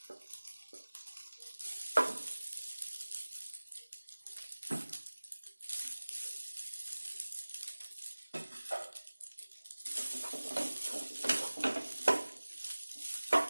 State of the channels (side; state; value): both; inverted; correlation -1.00